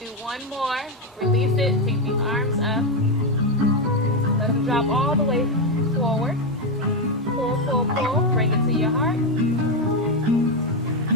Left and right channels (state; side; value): normal; both; correlation 0.07